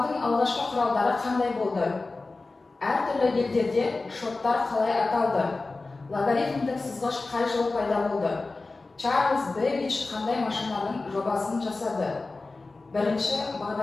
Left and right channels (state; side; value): quieter; right; 3.5 dB